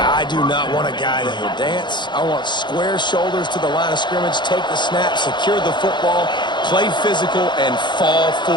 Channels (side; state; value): right; late; 0.22 ms